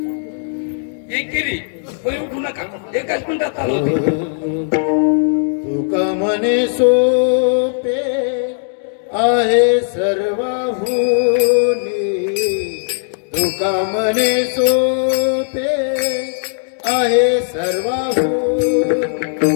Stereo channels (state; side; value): silent; right; digital silence